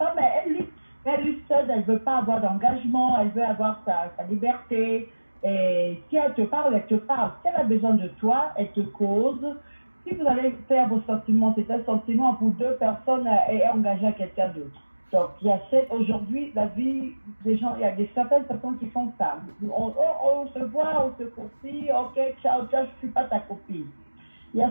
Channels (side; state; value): both; inverted; correlation -1.00